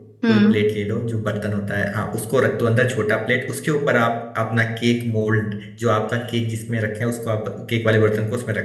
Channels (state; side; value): identical; both; correlation 1.00